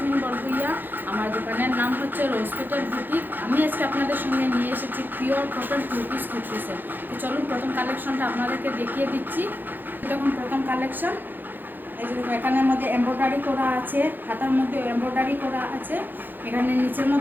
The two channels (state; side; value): late; left; 0.090 ms